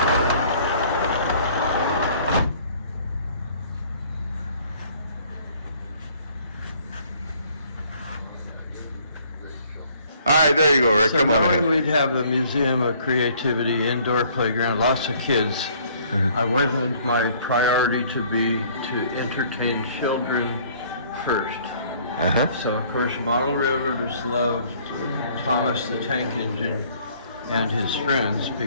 All right, there you go, Rick. So Come on ahead. we'd have a museum of creativity, indoor playground, lots of kids. I wasn't my priority to entertain children first. So of course model railroaders loved Thomas the Tank Engine and his friends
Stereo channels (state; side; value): inverted; both; correlation -0.58